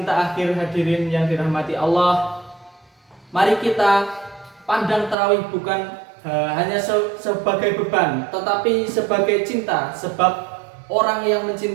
akhir. Hadirin yang dirahmati Allah, mari kita pandang tarawih bukan hanya sebagai beban, tetapi sebagai cinta. Sebab orang yang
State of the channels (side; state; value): left; drops out; at 5.2 s